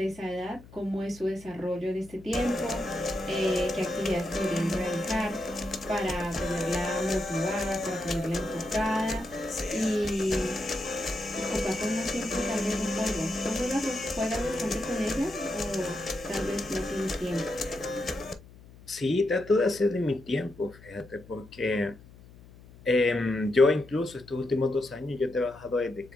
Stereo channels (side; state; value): left; noise; hum, 21 dB below the sound